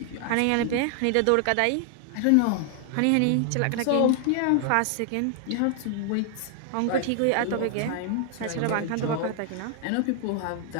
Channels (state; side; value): different; both; correlation 0.00